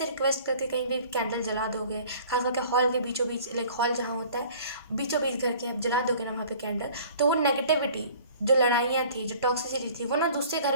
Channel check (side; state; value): both; inverted; correlation -0.49